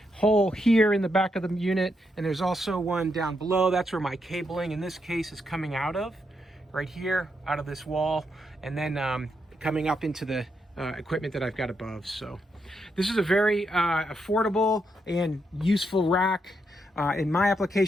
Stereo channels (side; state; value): both; normal; correlation 0.81